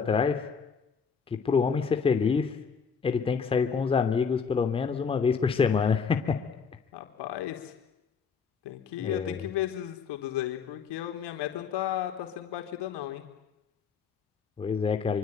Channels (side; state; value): right; quieter; 6.0 dB